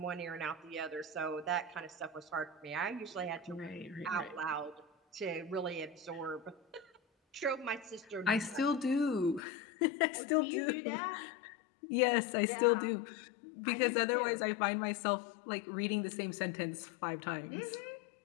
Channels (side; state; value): right; drops out; at 9.4 s